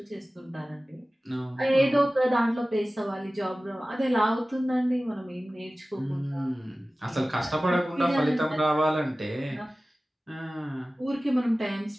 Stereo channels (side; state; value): both; normal; correlation 0.97